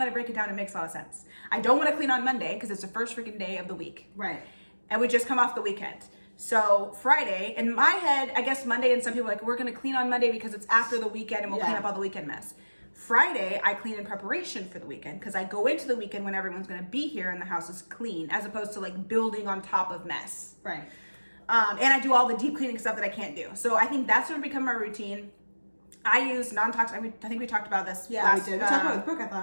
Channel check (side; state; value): both; inverted; correlation -1.00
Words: I break it down, it makes a lot of sense. I don't want to clean on Monday because it's the first freaking day of the week. Right. And we just come off the weekend. So Friday, in my head, I guess Monday, and some people are like, we're going to clean on Monday because it's after the weekend and we'll clean up all the weekend mess. Friday, I clean in preparation for the weekend because I go into the weekend when everyone's going to be here and the house is clean, as opposed to like building on top of mess. Right. And I do all the deep cleaning stuff that I can't do. So I think that's going to become my routine. I use non-toxic. I think we talked about this. Yeah, we did. We talked about it with Brooke, I